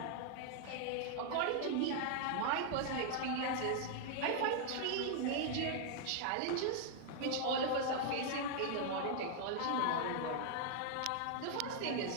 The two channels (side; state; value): both; different; correlation 0.00